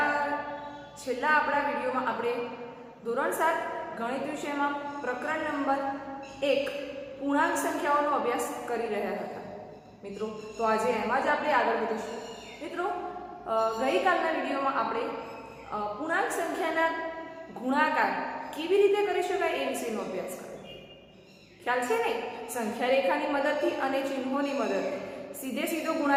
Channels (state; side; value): identical; both; correlation 1.00